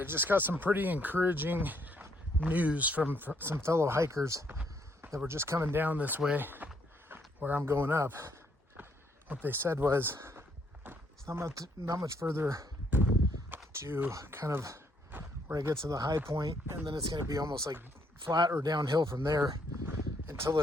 just got some pretty encouraging news from some fellow hikers that were just coming down this way where I'm going up. What they said was it's not much further to kind of where I get to the high point, and then it's going to be almost like flat or downhill from there until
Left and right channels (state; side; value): normal; both; correlation 0.70